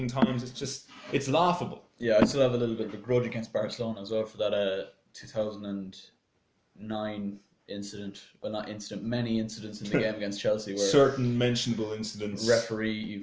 times. It's laughable. Yeah, I still have a little bit of a grudge against Barcelona as well for that 2009 incident. Well, not incident, many incidents in the game against Chelsea where certain mentionable incidents. Referee,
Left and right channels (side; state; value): both; identical; correlation 1.00